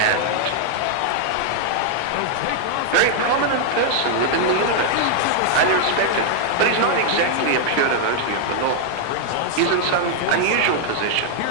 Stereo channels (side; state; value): both; different; correlation -0.01